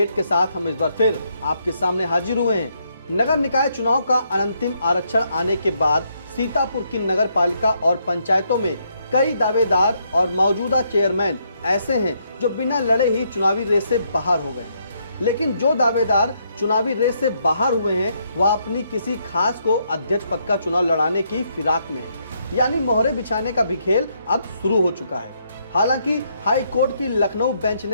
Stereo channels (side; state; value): both; inverted; correlation -0.75